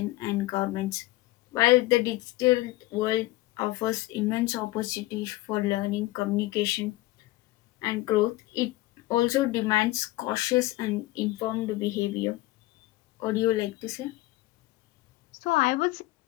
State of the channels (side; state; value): right; quieter; 18.3 dB